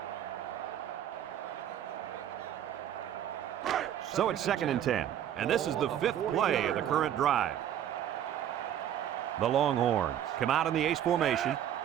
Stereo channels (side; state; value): left; quieter; 10.6 dB